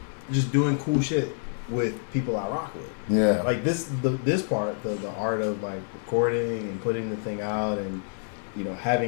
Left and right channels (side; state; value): right; silent; 60 dB below the other